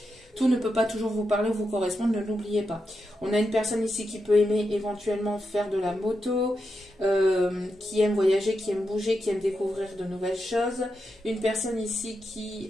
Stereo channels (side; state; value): both; normal; correlation 0.86